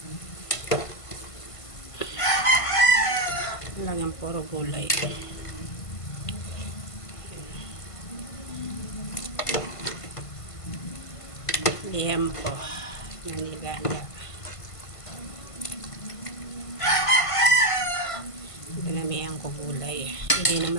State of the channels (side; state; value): right; late; 1.5 ms